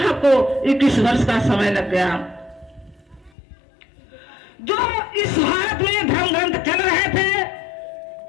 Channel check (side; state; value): right; drops out; at 3.3 s